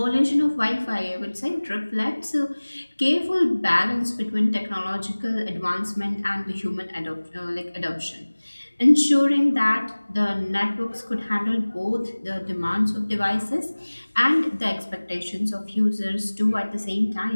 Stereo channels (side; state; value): both; inverted; correlation -1.00